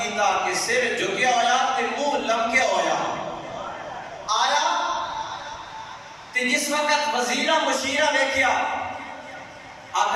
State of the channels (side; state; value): both; identical; correlation 1.00